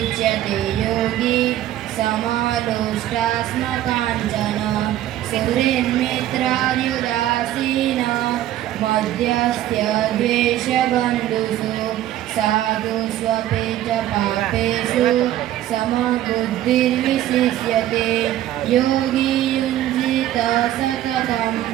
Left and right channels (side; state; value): left; quieter; 13.1 dB